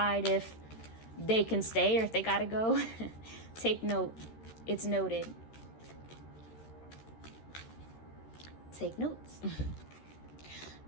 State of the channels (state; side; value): late; right; 13 ms